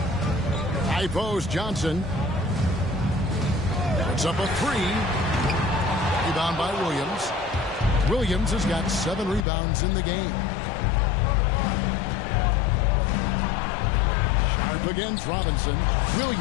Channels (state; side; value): drops out; right; at 9.5 s